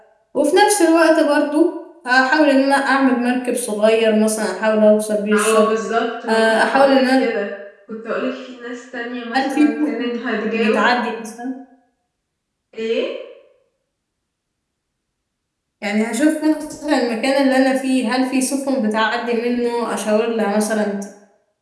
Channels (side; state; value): both; identical; correlation 1.00